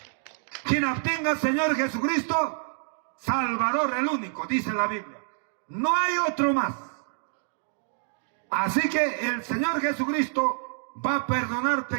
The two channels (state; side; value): silent; left; digital silence